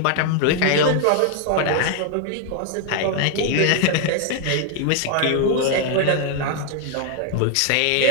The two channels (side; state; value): both; different; correlation 0.00